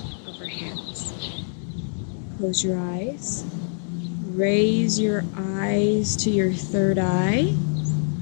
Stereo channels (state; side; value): silent; right; digital silence